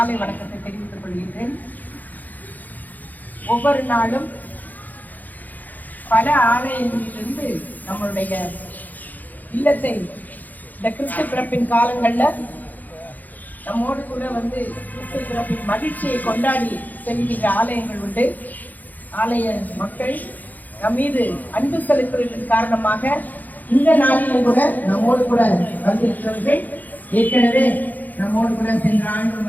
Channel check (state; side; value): late; right; 0.082 ms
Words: வணக்கத்தை தெரிவித்துக் கொள்கின்றேன். ஒவ்வொரு நாளும் பல ஆலயங்களிலிருந்து நம்மளுடைய இல்லத்தை இந்த கிறிஸ்து பிறப்பின் காலங்களில் நம்மோடு கூட கிறிஸ்து பிறப்பின் மகிழ்ச்சியை கொண்டாடி செல்கின்ற ஆலயங்கள் உண்டு. ஆலய மக்கள் நம் மீது அன்பு செலுத்துவதன் காரணமாக இந்த நாளிலும் கூட நம்மோடு கூட வந்திருக்கிறவர்கள் ஏற்கனவே நம்மோடு கூட சென்ற